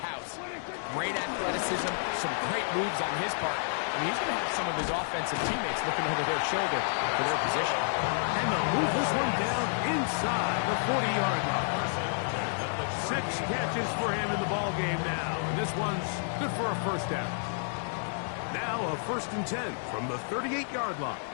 Great athleticism, some great moves on his part. I mean, he's going to have some of his offensive teammates looking over their shoulder for their position. And they'll move this one down inside the 40-yard line. 6 catches for him in the ballgame now. And this one's good for a first down. Now a 1st and 10 from the 38-yard line.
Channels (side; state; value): right; silent; digital silence